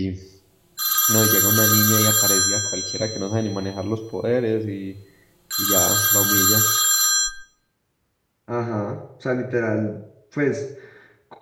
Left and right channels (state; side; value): identical; both; correlation 1.00